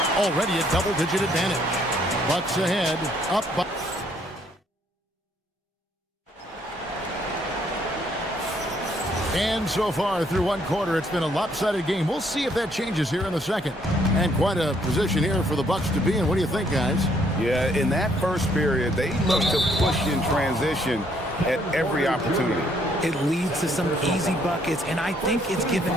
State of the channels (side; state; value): both; normal; correlation 0.67